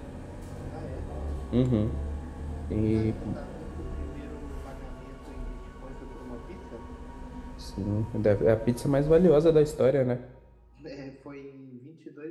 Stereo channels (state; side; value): identical; both; correlation 1.00